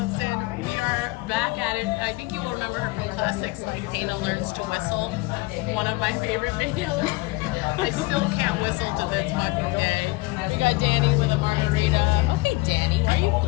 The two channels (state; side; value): quieter; right; 22.6 dB